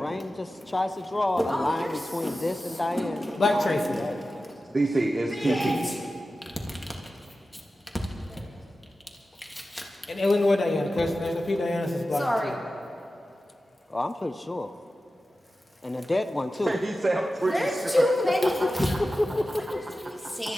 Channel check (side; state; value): both; normal; correlation 0.94